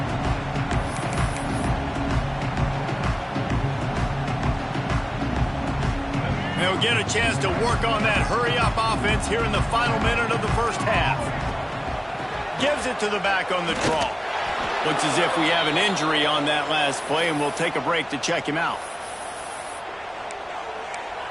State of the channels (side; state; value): both; identical; correlation 1.00